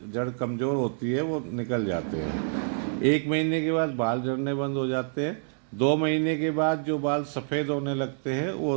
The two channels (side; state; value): left; silent; 60 dB below the other